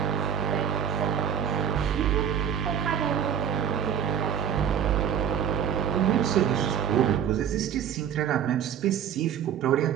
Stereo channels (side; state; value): left; quieter; 8.9 dB